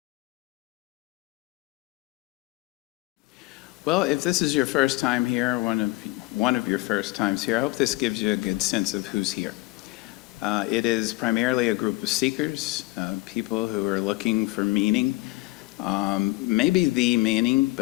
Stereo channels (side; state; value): right; quieter; 21.1 dB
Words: if this is your first time here, one of your first times here, I hope this gives you a good sense of who's here. It is primarily a group of seekers, people who are looking for meaning, maybe the meaning,